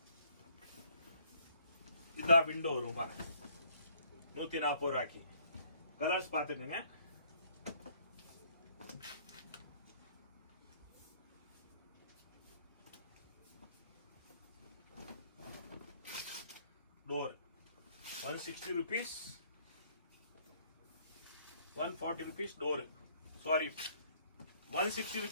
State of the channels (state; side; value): inverted; both; correlation -0.63